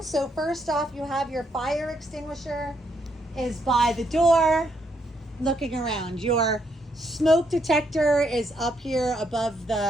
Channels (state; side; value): normal; both; correlation 0.75